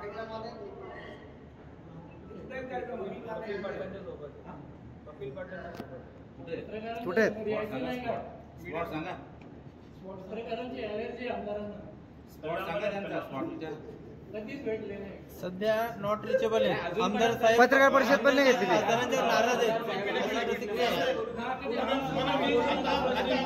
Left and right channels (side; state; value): both; identical; correlation 1.00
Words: पाटलांच्या सोबत. कपिल पाटलांच्या सोबत कुठे सध्या नॉट रिचेबल आहे. आमदार साहेब पत्रकार परिषद पण नाही घेतली. आमदारांच्या नाराज आहेत.